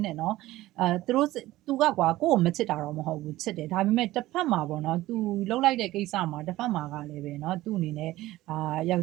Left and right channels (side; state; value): left; quieter; 16.6 dB